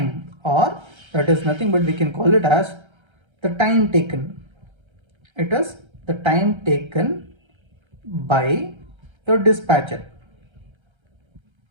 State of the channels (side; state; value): left; late; 1.3 ms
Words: or that is nothing but we can call it as the time taken. It is the time taken by your dispatcher.